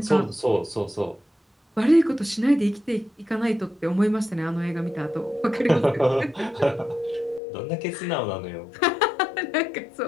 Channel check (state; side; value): drops out; right; at 7.4 s